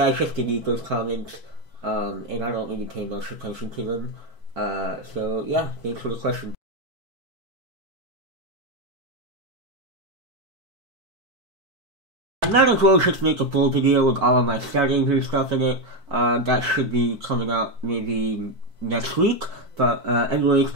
I just delete those comments, and I don't really pay much attention to them. So yeah, thanks for the question. I might as well just make a full video with all of my settings and stuff in it. That should be coming out maybe next week. But anyways,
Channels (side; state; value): left; late; 4.5 ms